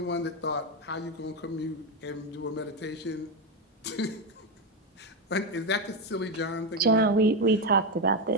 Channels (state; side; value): normal; both; correlation 0.10